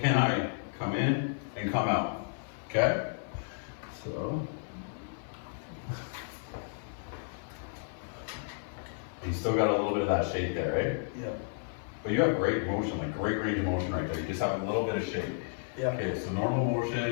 Can I come in and come out? Okay? So. You still got a little bit of that shape there, right? Yeah. But you have great motion, like great range of motion right there. You just have a little bit of shape. Yeah. Okay, so normal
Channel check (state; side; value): silent; right; digital silence